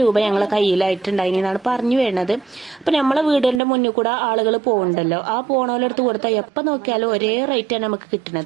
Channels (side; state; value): left; drops out; at 3.6 s